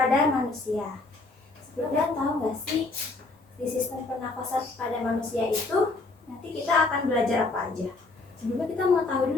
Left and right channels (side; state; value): right; quieter; 3.4 dB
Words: manusia. Sebelumnya tahu nggak sih di sistem pernafasan pada manusia itu nanti kita akan belajar apa aja? Sebelumnya kita mau tahu